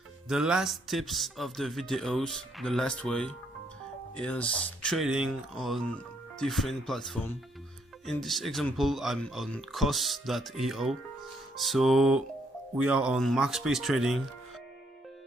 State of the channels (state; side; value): normal; both; correlation 0.72